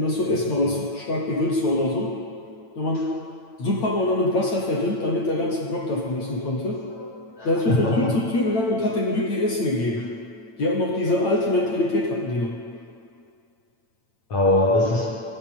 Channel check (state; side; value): late; right; 8.9 ms